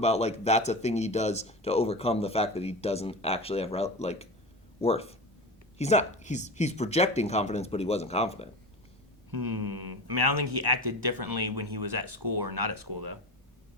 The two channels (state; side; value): normal; both; correlation 0.28